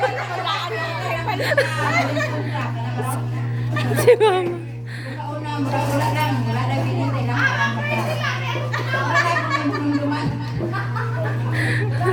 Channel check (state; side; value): identical; both; correlation 1.00